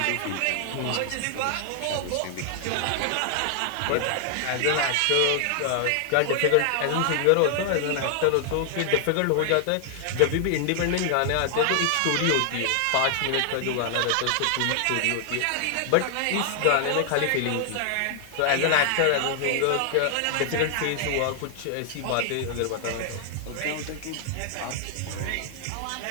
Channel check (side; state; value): both; different; correlation 0.00